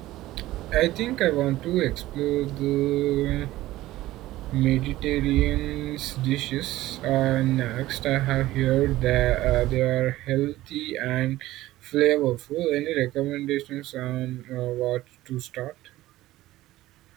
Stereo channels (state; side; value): quieter; left; 16.3 dB